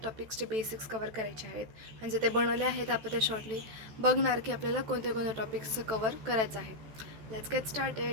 टॉपिक्सचे बेसिक्स कवर करायचे आहेत. म्हणजे ते बनवले आहेत आपण ते शॉर्टली बघणार की आपल्याला कोणत्या कोणत्या टॉपिक्सचं कवर करायचं आहे. Let's get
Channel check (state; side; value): late; left; 14 ms